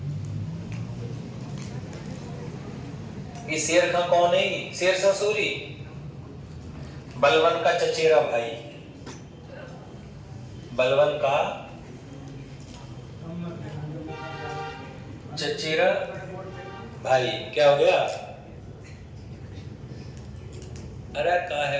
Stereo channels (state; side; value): identical; both; correlation 1.00